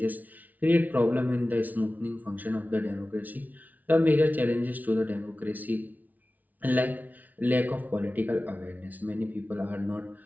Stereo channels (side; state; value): left; late; 0.077 ms